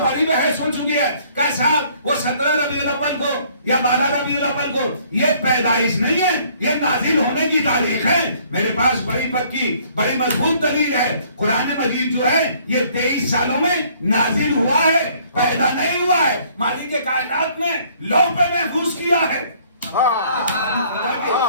بڑی بحث ہو چکی ہے کہ صاحب وہ 17 ربیع الاول کو یا 12 ربیع الاول کو، یہ پیدائش نہیں ہے، یہ نازل ہونے کی تاریخ ہے۔ میرے پاس بڑی پکی بڑی مضبوط دلیل ہے، قرآن مجید جو ہے یہ 23 سالوں میں نازل ہوا ہے، پیدا نہیں ہوا ہے۔ مالک کائنات نے لوح پہ محفوظ کیا ہے۔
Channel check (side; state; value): both; inverted; correlation -0.60